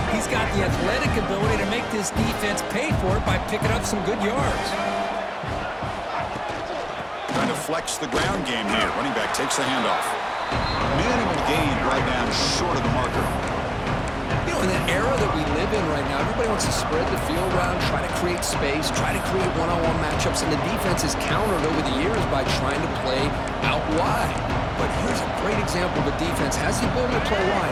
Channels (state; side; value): identical; both; correlation 1.00